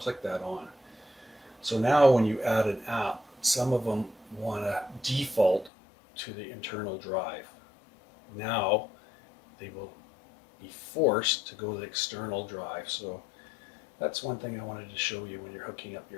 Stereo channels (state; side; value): drops out; right; at 5.7 s